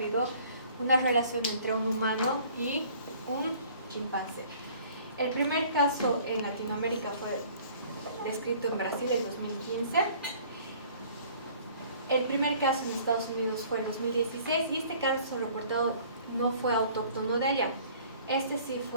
una relación entre un humano y un chimpancé. El primer caso en Latinoamérica fue descrito en Brasil en 2015. El primer caso en Estados Unidos fue en 2016 y este caso reportado no fue autóctono de allá. Este sí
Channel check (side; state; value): both; inverted; correlation -0.53